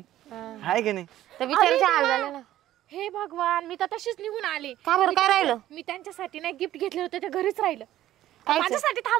हाय की नाही. तर बिचारीचे हाल झाले ना. हे भगवान मी तर तशीच निघून आले. का बरं काय राहिलं? मी त्यांच्यासाठी नाही गिफ्ट घेतले होते ते घरीच राहिलं. कायचं? माझ्यासाठी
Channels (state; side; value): quieter; left; 13.6 dB